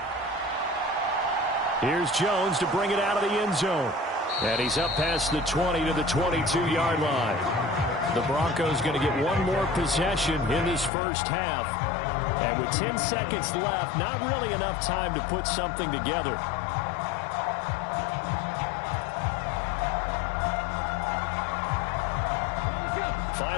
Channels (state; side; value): drops out; right; at 10.9 s